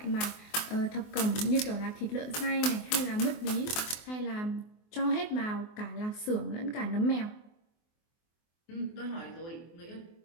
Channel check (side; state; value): right; late; 24 ms